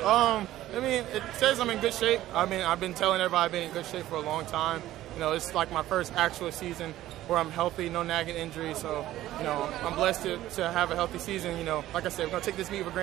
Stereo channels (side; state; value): left; quieter; 14.5 dB